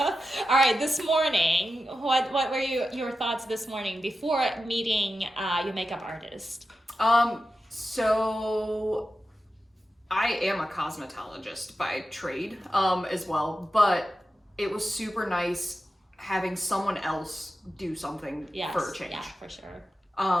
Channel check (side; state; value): both; normal; correlation 0.91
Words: right, this morning, what were your thoughts this morning before meeting your makeup artist? So I am a cosmetologist by trade, as well, but it was super nice having someone else do something for a change. Yeah, for sure.